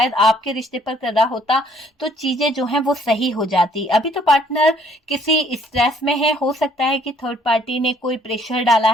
आपके रिश्ते पर कर रहा होता तो चीजें जो हैं वो सही हो जाती। अभी तो पार्टनर किसी स्ट्रेस में है। हो सकता है कि थर्ड पार्टी ने कोई प्रेशर डाला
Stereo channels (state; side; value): normal; both; correlation 0.62